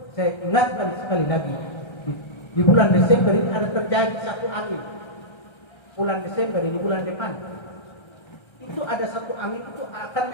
Saya ingatkan sekali lagi di bulan Desember ini ada terjadi satu angin. Bulan Desember ini bulan depan. Itu ada satu angin itu akan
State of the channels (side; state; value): right; late; 1.3 ms